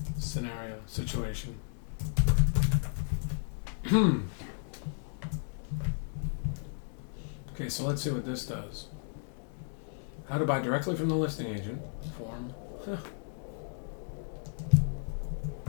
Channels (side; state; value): right; silent; digital silence